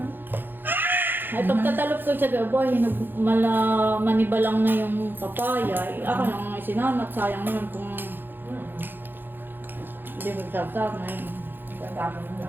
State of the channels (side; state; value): left; late; 0.096 ms